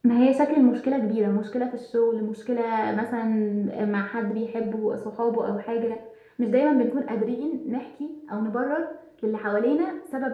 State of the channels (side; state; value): both; identical; correlation 1.00